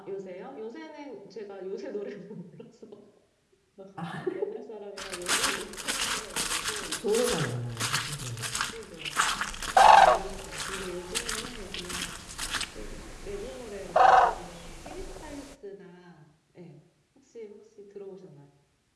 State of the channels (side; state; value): both; identical; correlation 1.00